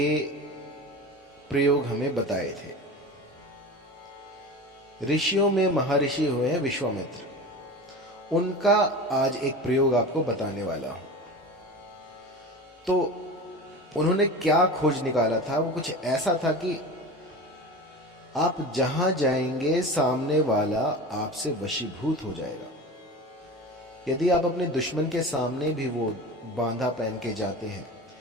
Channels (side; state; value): both; normal; correlation 0.31